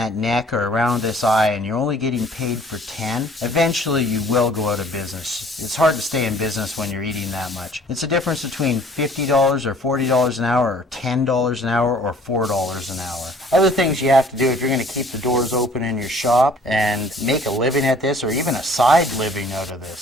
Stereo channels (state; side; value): normal; both; correlation 0.54